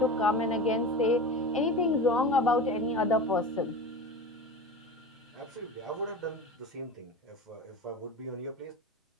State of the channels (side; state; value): both; normal; correlation 0.30